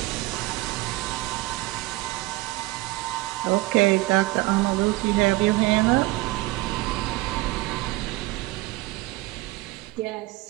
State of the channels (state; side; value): quieter; left; 20.2 dB